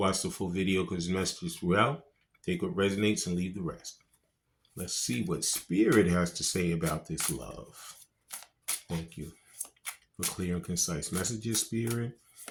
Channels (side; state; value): both; identical; correlation 1.00